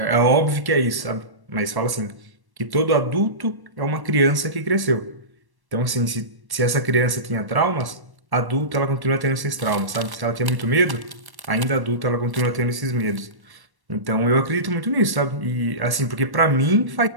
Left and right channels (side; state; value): left; late; 1.1 ms